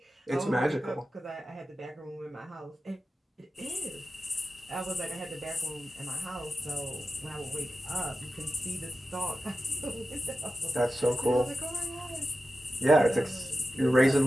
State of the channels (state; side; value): normal; both; correlation 0.92